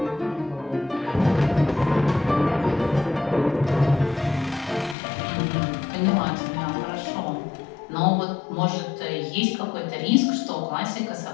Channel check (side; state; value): right; drops out; at 5.0 s